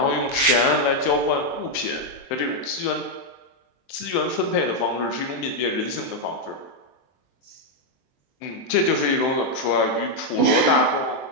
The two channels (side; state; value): right; late; 23 ms